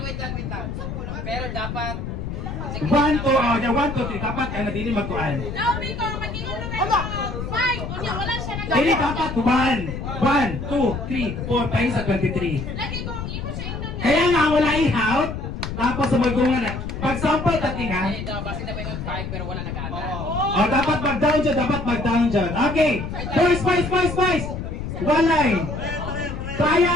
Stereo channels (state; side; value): noise; left; rumble, 6 dB below the sound